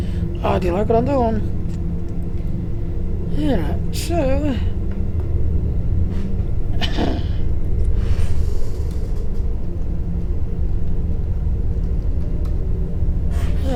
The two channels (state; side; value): identical; both; correlation 1.00